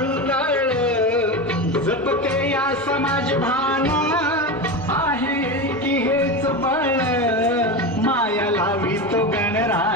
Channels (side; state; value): both; normal; correlation 0.21